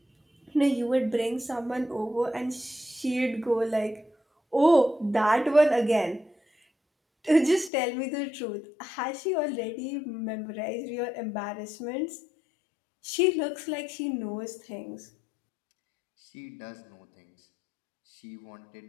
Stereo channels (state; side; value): drops out; right; at 7.7 s